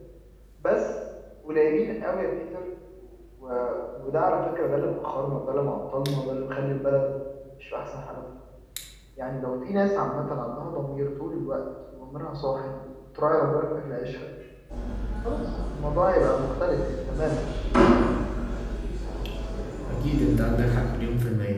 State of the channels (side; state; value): both; identical; correlation 1.00